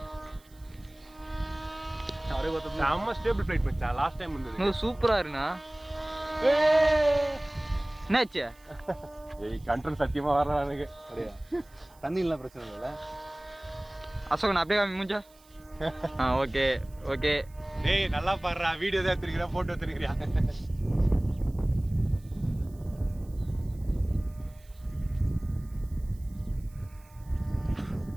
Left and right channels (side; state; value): right; noise; hiss, 28 dB below the sound